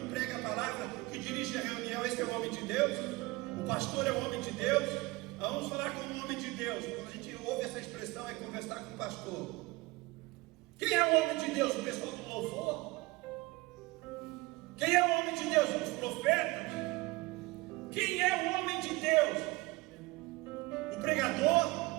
prega a palavra, que dirige a reunião, esse é o homem de Deus. O pastor é o homem de Deus. Vamos falar como um homem de Deus. Quando a gente ouve essa expressão, é conversar com o pastor. Quem é o homem de Deus? O pessoal do louvor? Quem é o homem de Deus? Os profetas? Quem é o homem de Deus? O pregador?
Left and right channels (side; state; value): left; quieter; 22.5 dB